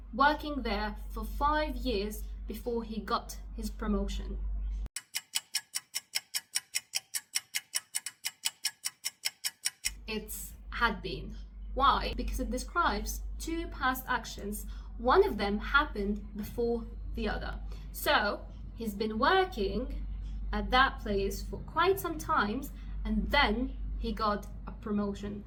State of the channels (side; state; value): both; identical; correlation 1.00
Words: working there for 5 years before he got his promotion. It's had been. Why? Because it describes two past actions. One of them happened before the other. So he's been working at that place for quite some time and then he got a promotion.